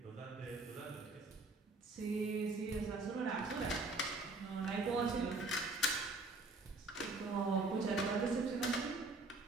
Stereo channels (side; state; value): left; quieter; 3.2 dB